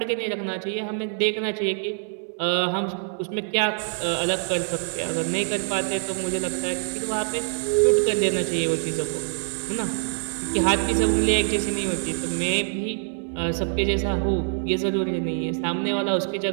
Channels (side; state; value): left; silent; digital silence